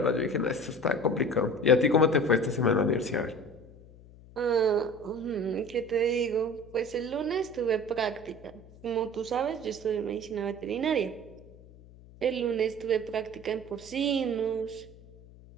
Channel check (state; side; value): noise; left; hum, 21 dB below the sound